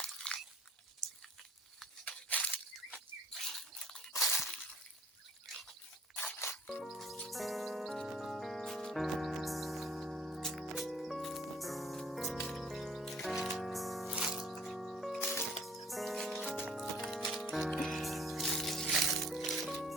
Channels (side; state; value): both; normal; correlation 0.55